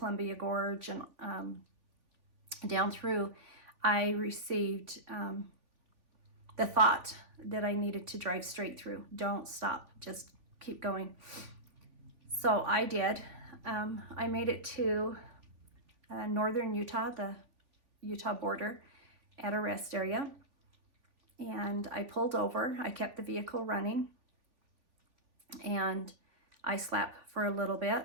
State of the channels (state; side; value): late; left; 3.5 ms